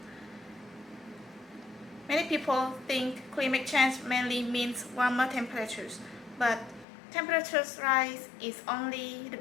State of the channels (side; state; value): right; drops out; at 6.9 s